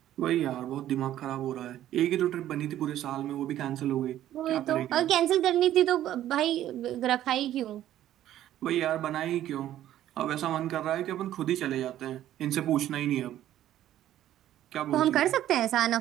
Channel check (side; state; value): left; quieter; 12.5 dB